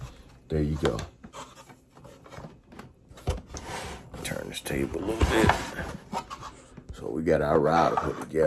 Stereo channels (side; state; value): both; identical; correlation 1.00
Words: There you go. Turn this table a little bit. So we got our router put